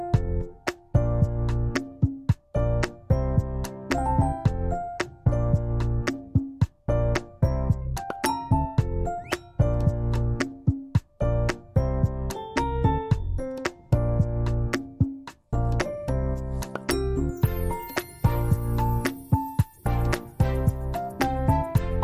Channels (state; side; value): identical; both; correlation 1.00